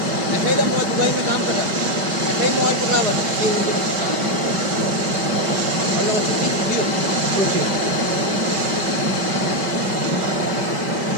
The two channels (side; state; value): left; late; 5.2 ms